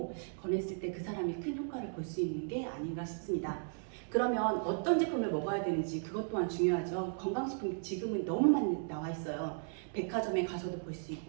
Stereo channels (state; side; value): silent; left; digital silence